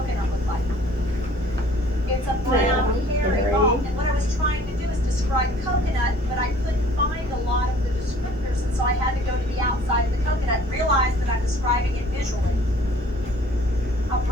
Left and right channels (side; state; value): both; normal; correlation 0.53